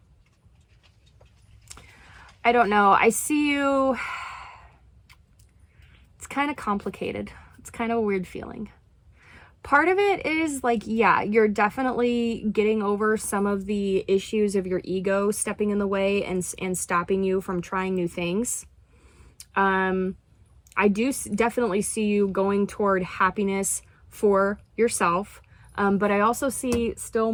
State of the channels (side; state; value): both; identical; correlation 1.00